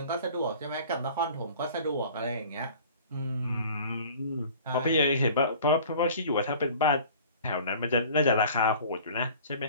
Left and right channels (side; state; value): both; inverted; correlation -0.46